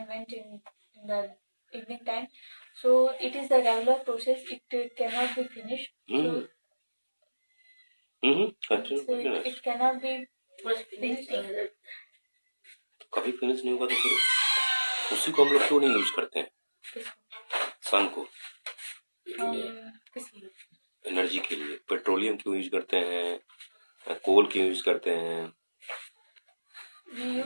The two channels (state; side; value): inverted; both; correlation -1.00